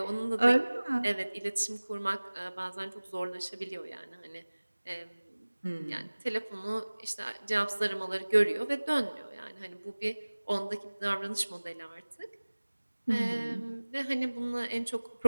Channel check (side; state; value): both; inverted; correlation -1.00